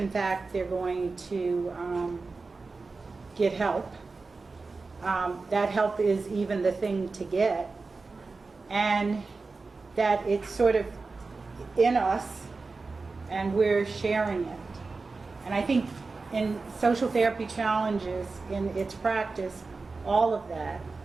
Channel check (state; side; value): quieter; left; 4.0 dB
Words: fact they're going to get help. That help is even the thing to get, and that it's sort of in us and we're sharing it. And I think in social therapy challenges, in its practice, all of that,